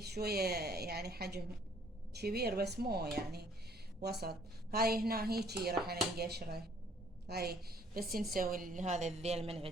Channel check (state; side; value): normal; both; correlation 0.61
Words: شوية يعني حجم كبير بس مو يعني وسط. هاي هنا هيجي راح نقشره. هاي بس نسوي هذا الذيل من